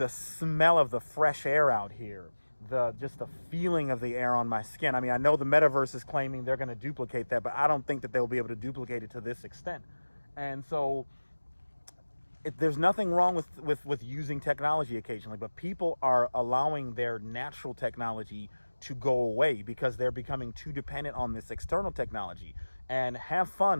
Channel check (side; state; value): both; inverted; correlation -1.00